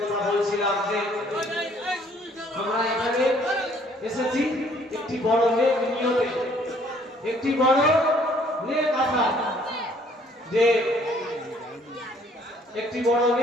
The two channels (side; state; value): both; normal; correlation 0.61